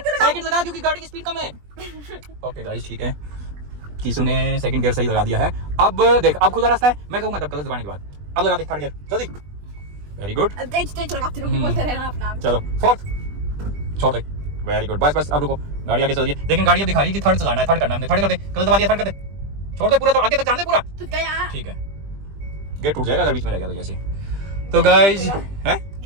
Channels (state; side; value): late; left; 20 ms